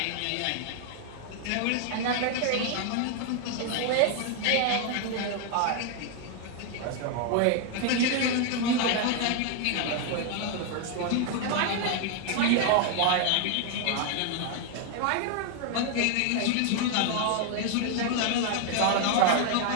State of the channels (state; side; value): different; both; correlation 0.00